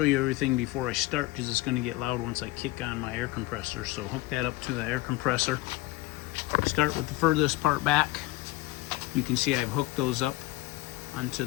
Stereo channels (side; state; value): right; quieter; 18.4 dB